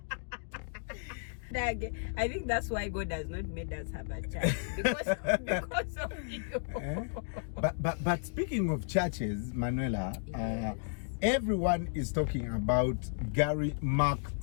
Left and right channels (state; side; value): silent; right; digital silence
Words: I think that's why God has not made us have a church because of you. But speaking of churches, Manuela, yes. Everyone is talking about Gary Mark